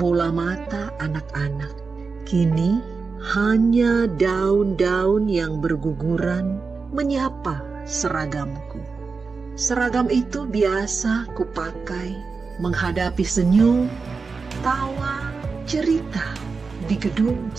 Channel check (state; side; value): quieter; left; 4.6 dB